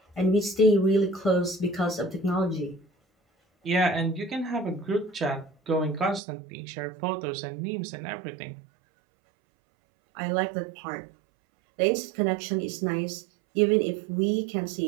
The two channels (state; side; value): drops out; left; at 6.2 s